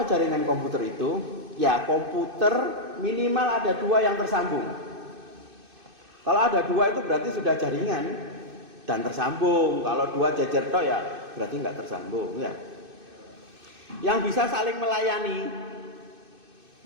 jaringan komputer itu? Ya, komputer minimal ada 2 yang tersambung. Kalau ada 2 itu berarti sudah jaringan dan tersambung. Kalau 2 jejer tok ya berarti enggak tersambung ya. Yang bisa saling melayani.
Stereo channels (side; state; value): left; late; 2.6 ms